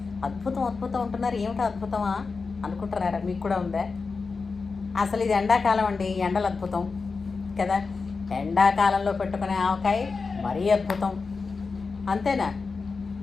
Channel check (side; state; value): right; quieter; 4.5 dB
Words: అద్భుతం అద్భుతం అంటున్నారు, ఏమిటి అద్భుతమా అనుకుంటున్నారా? మీకు కూడా ఉందా? అసలు ఇది ఎండాకాలం అండి, ఎండలు అద్భుతం కదా. ఎండాకాలంలో పెట్టుకునే ఆవకాయ మరీ అద్భుతం, అంతేనా?